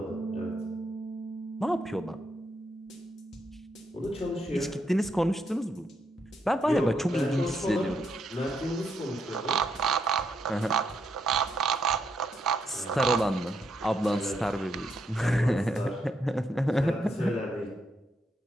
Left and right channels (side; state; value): both; normal; correlation 0.78